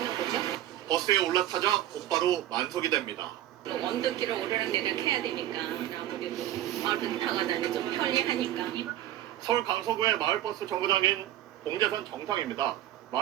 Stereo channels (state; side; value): quieter; left; 13.1 dB